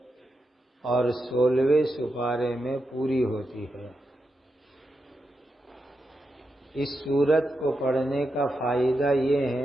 اور 16ویں سپارے میں پوری ہوتی ہے. اس سورت کو پڑھنے کا فائدہ یہ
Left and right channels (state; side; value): normal; both; correlation 0.87